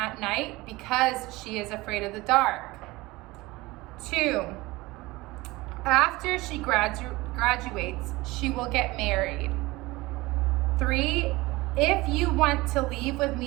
night because she is afraid of the dark. 2, after she graduates, she will get married. 3, if you want to leave with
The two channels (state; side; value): quieter; left; 21.0 dB